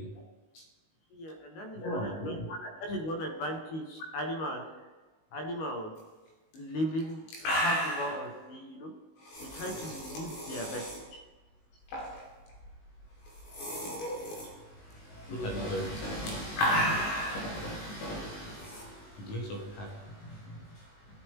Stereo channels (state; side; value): late; right; 19 ms